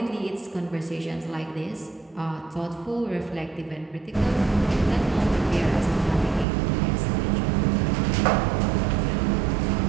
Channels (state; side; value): drops out; left; at 6.5 s